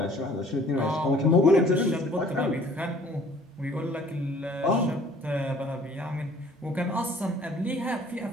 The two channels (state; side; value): normal; both; correlation 0.54